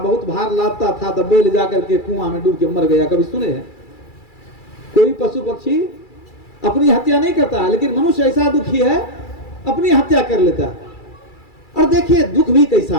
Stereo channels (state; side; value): late; right; 2.3 ms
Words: भार लादता था, तो बैल जाकर के कुआं में डूब के मर गया, कभी सुने हैं? कोई पशु पक्षी अपनी हत्या नहीं करता है, लेकिन मनुष्य ऐसा दुखी है अपनी हत्या कर लेता है। और देखिए दुख भी कैसा